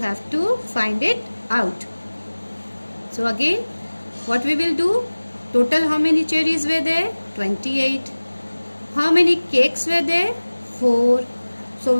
to find it out. So again, what we will do? Total how many cherries were there? 28. How many cakes were there? 4. So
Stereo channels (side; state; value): both; inverted; correlation -1.00